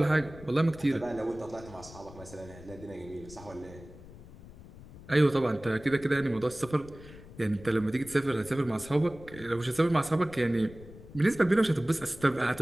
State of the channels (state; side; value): noise; left; rumble, 18 dB below the sound